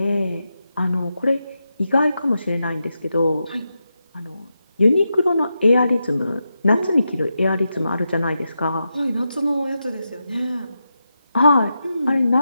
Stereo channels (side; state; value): both; inverted; correlation -0.88